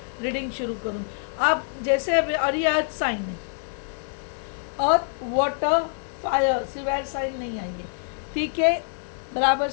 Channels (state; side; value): silent; right; digital silence